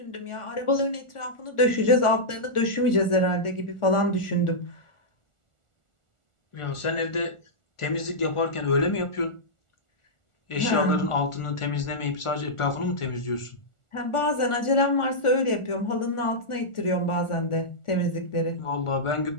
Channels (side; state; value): right; late; 1.4 ms